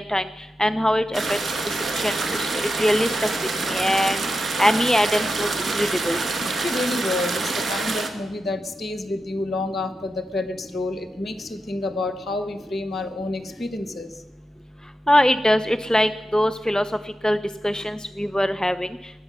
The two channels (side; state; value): both; normal; correlation 0.89